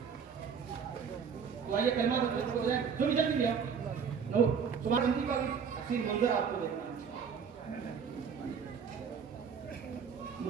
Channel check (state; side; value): quieter; left; 6.5 dB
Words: تو آئیے کلمہ ہو جائے، جو بھی جلدی لیا نو تمہاری زندگی کا بھی حسین منظر آپ کو دیکھنا ہے،